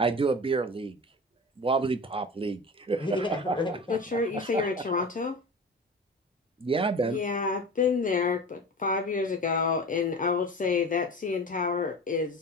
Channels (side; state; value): both; normal; correlation 0.33